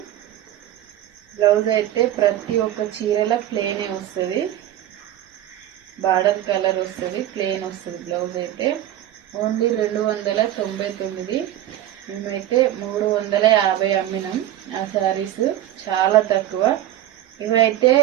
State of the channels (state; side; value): quieter; left; 12.7 dB